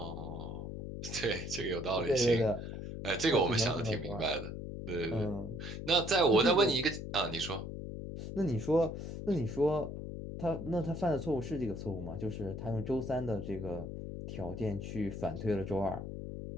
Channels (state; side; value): noise; left; hum, 7 dB below the sound